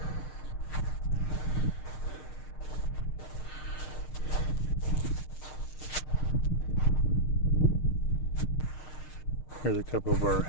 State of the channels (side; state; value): right; late; 6.5 ms